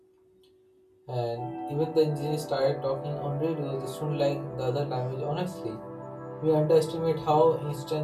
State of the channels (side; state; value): both; identical; correlation 1.00